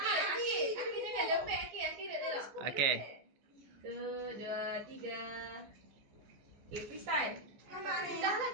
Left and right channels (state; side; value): late; left; 14 ms